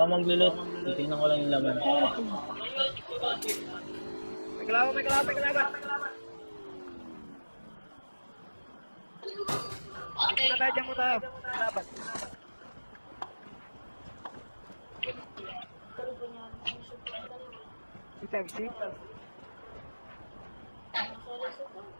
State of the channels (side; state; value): both; inverted; correlation -1.00